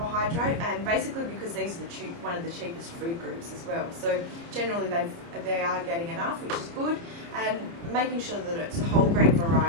and basically because these are one of the cheapest food groups as well. So generally they are getting enough, which is good. And making sure that it's whole grain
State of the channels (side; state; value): left; late; 29 ms